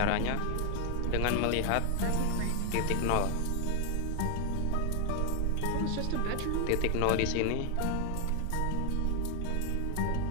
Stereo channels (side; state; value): both; different; correlation 0.00